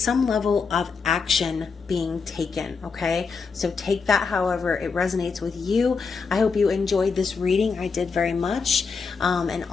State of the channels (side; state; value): right; quieter; 5.1 dB